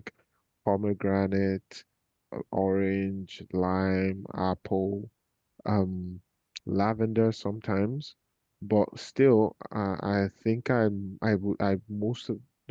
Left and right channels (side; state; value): both; identical; correlation 1.00